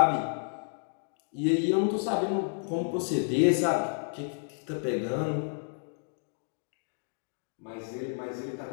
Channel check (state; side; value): silent; right; digital silence